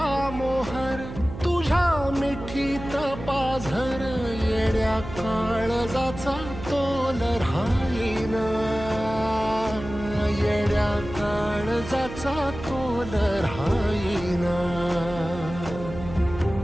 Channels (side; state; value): right; noise; hum, 11 dB below the sound